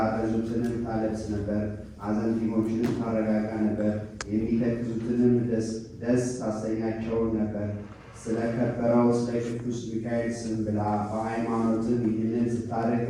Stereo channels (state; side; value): identical; both; correlation 1.00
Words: ታለብስ ነበር፣ አዘንቲሞችንም ታረጋጋ ነበር፣ የሚተክዙትንም ደስ ታሰኛቸው ነበር። ስለከበረው ስለ ቅዱስ ሚካኤል ስም ብላ በሃይማኖትም ይህንን ስታደርግ